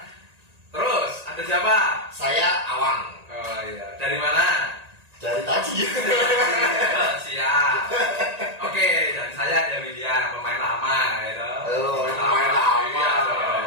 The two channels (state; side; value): late; left; 1.9 ms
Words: Terus ada siapa? Saya Awang Oh iya. Dari mana? dari tadi. Siap. Oke, dan saya ada Widya, pemain lama gitu. Oh, main lama. Iya,